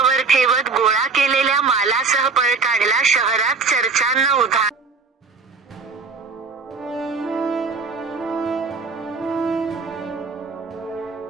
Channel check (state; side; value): quieter; left; 4.5 dB